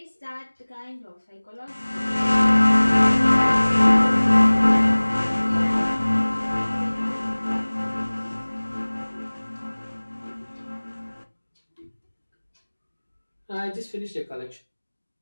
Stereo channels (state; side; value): inverted; both; correlation -1.00